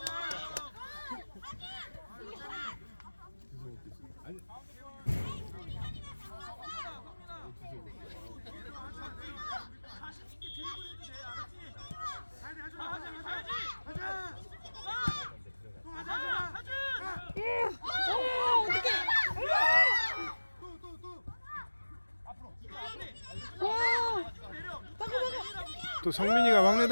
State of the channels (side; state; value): both; inverted; correlation -1.00